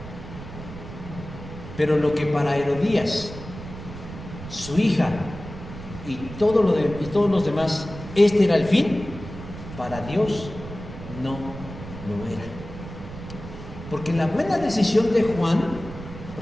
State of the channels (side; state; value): right; noise; rumble, 12 dB below the sound